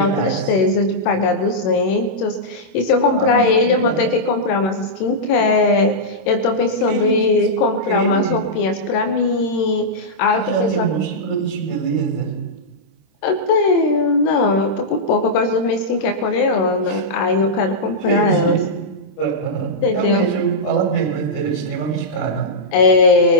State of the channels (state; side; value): late; right; 26 ms